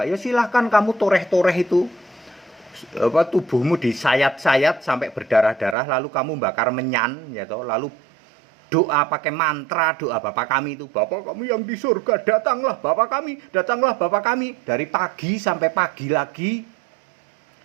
Ya silahkan kamu toreh-toreh itu. Tubuhmu disayat-sayat sampai berdarah-darah, lalu kamu bakar menyan, ya toh, lalu doa pakai mantra, doa Bapa kami itu, Bapa kami yang di surga, datanglah Bapa kami, datanglah Bapa kami, dari pagi sampai pagi lagi,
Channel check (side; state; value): left; drops out; at 5.8 s